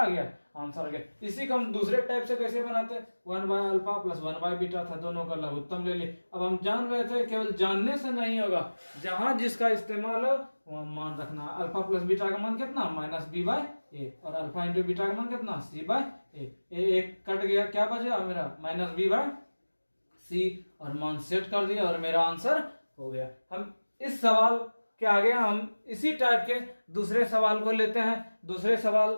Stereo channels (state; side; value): inverted; both; correlation -1.00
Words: गया, आंसर आ गया। इसी को हम दूसरे टाइप से कैसे बनाते, 1 by alpha plus 1 by beta था, दोनों का लघुत्तम ले लिए। अब हम जान रहे थे केवल जानने से नहीं होगा, जहां जिसका इस्तेमाल हो वहां मान रखना। अल्फा प्लस बीटा का मान कितना -b बाय ए, और अल्फा इंटू बीटा का मान कितना c बाय ए। एक कट गया, क्या बचा मेरा -b बाय सी, और मान सेट कर दिया और मेरा आंसर हो गया। हम इस सवाल के आगे हम इसी टाइप के दूसरे सवाल को लेते हैं। दूसरे सवाल